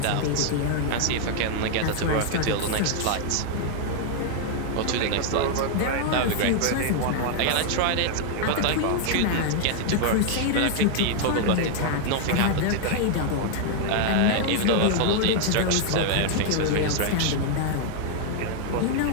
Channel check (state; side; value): different; both; correlation 0.00